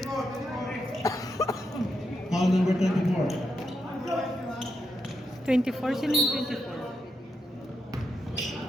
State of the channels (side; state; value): both; normal; correlation 0.83